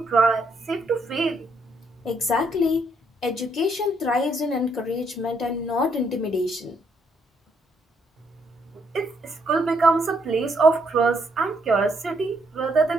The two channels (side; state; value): both; normal; correlation 0.72